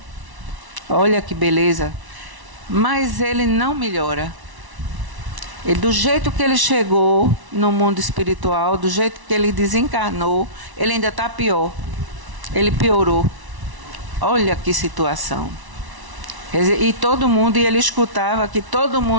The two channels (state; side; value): late; left; 1.0 ms